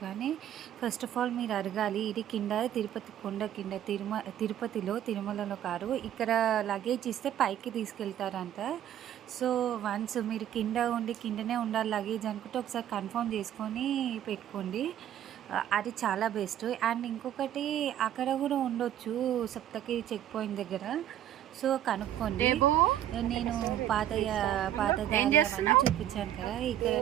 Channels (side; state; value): left; quieter; 11.4 dB